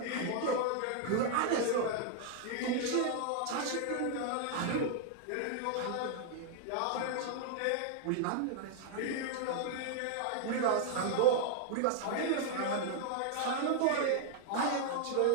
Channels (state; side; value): different; both; correlation 0.00